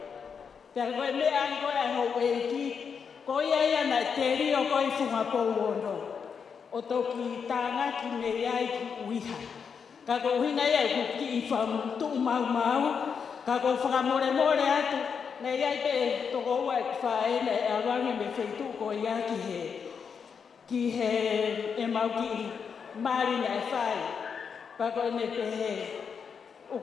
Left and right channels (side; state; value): right; quieter; 6.4 dB